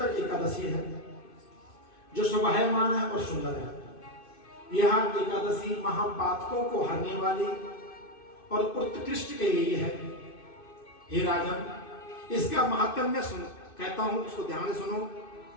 एकादशी है जो शोभायमान है और सुंदर है। यह एकादशी महापातकों को हरने वाली और उत्कृष्ट कही गई है। हे राजन, इसका महात्म्य सुन कहता हूं, उसको ध्यान से सुनो।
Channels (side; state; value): right; late; 2.6 ms